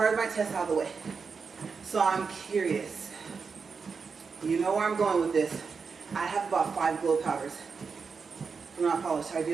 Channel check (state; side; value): quieter; left; 5.3 dB